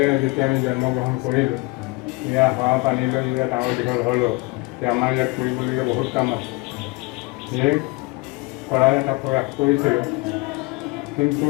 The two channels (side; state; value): right; quieter; 24.7 dB